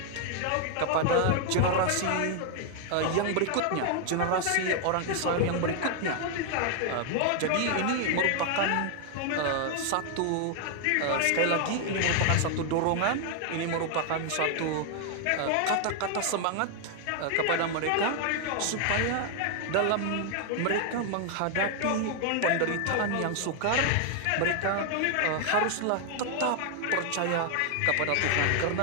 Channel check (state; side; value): different; both; correlation 0.00